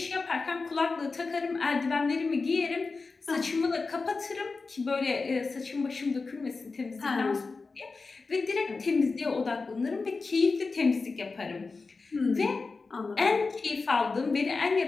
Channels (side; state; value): right; quieter; 4.1 dB